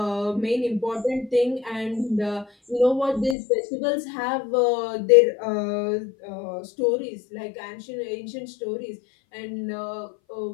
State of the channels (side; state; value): right; drops out; at 3.4 s